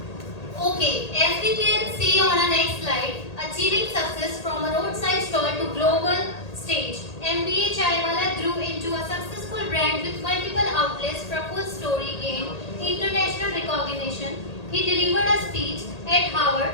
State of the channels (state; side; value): late; right; 1.8 ms